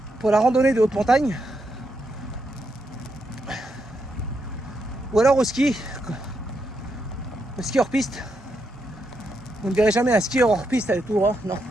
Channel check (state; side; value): normal; both; correlation 0.81